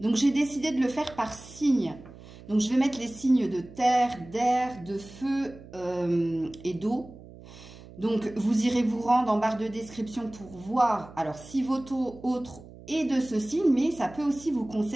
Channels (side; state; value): right; noise; hum, 19 dB below the sound